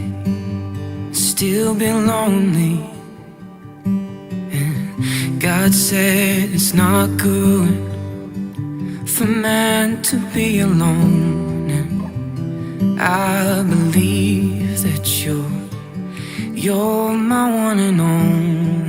still be lonely. God said it's not good for man to be alone. And I believe that you're my one and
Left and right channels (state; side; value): identical; both; correlation 1.00